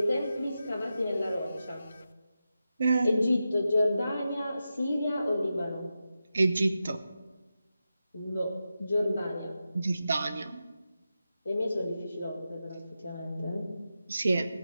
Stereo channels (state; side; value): inverted; both; correlation -0.90